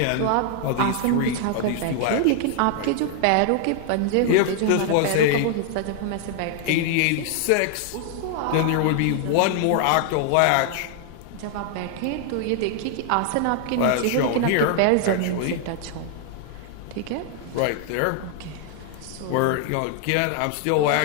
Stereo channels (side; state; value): both; different; correlation 0.00